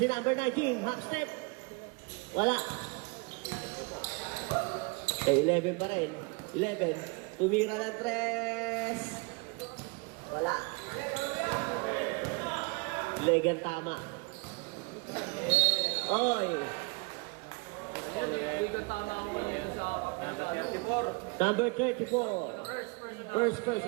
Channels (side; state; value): left; quieter; 29.7 dB